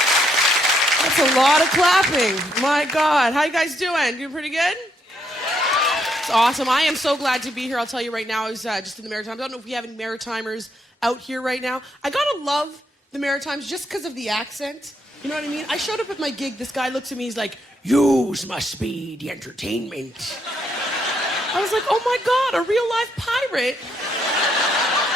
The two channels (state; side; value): normal; both; correlation 0.75